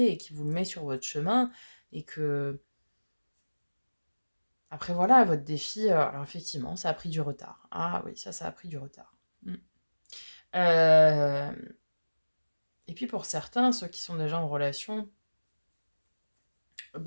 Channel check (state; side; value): inverted; both; correlation -1.00